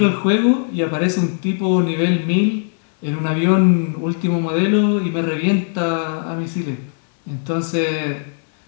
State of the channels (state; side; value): silent; right; digital silence